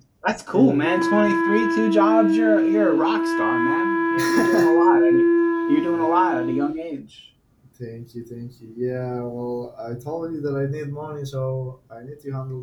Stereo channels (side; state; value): both; identical; correlation 1.00